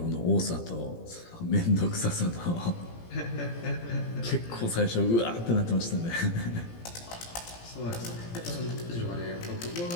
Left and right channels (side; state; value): right; late; 17 ms